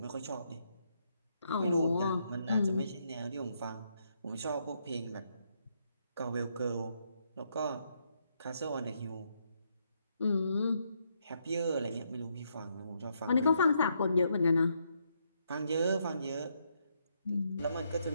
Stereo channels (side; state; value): both; inverted; correlation -0.76